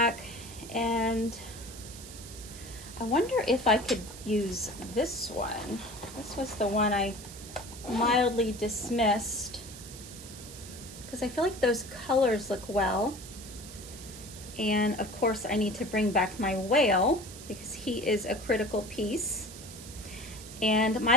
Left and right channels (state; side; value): noise; right; hiss, 14 dB below the sound